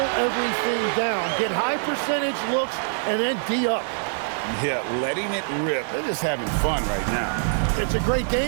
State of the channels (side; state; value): left; silent; digital silence